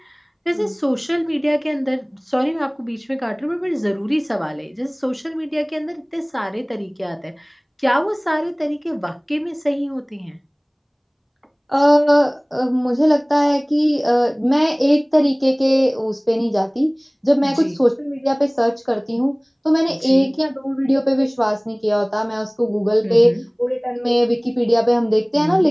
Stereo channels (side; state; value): both; identical; correlation 1.00